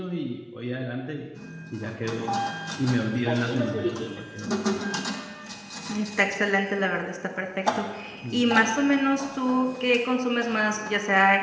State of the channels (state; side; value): identical; both; correlation 1.00